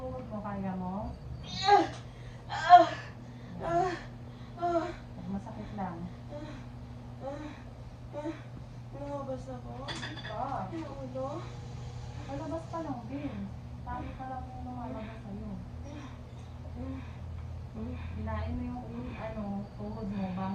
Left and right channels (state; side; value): identical; both; correlation 1.00